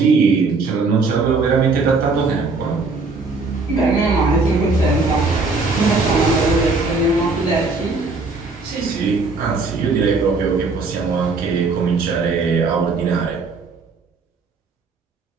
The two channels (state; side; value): quieter; left; 3.9 dB